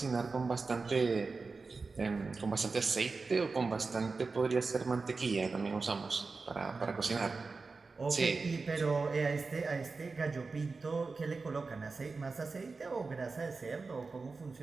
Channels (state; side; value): quieter; left; 4.2 dB